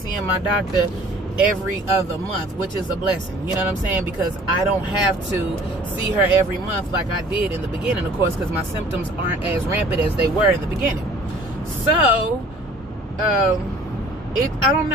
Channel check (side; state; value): both; normal; correlation 0.51